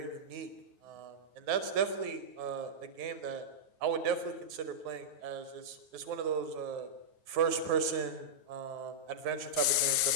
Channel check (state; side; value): late; left; 9.2 ms